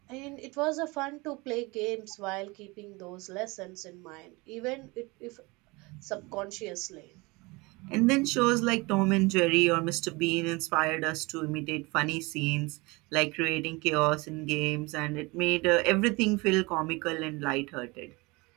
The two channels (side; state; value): left; quieter; 24.9 dB